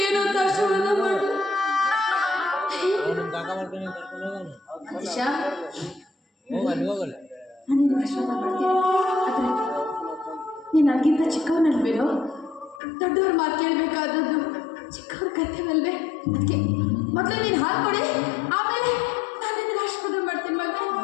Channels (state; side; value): drops out; right; at 12.8 s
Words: ಅಂತ ಆಶೀರ್ವಾದ ಮಾಡಲು ನಾನಿನ್ನು ಆಶೀರ್ವಾದ ಮಾಡ್ತೀನಿ. ಆದರೆ ನೀನು ನನಗಿಂತ ಚಿಕ್ಕವನಲ್ವೇನೋ? ದೊಡ್ಡವ್ರ ಮಾತು ಕೇಳಬೇಕಾದದ್ದು ಚಿಕ್ಕವ್ರ ಕರ್ತವ್ಯವಲ್ವೇ? ಅದಕ್ಕೆ ಮೊದಲು ನೀನು ಹಾಕೊಡಿ, ಆಮೇಲೆ ನಾನು ನಿನಗೆ ಆಶೀರ್ವಾದ ಮಾಡ್ತೀನಿ ಮಗ.